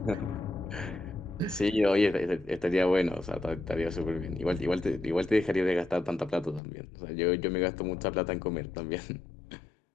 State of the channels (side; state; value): right; drops out; at 6.6 s